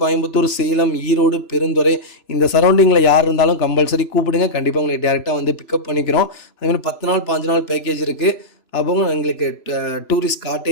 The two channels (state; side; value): late; right; 3.0 ms